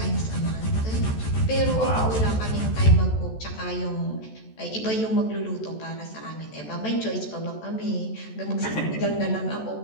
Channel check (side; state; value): right; late; 14 ms